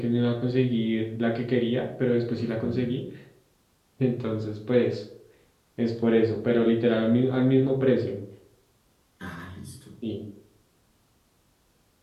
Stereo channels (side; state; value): both; identical; correlation 1.00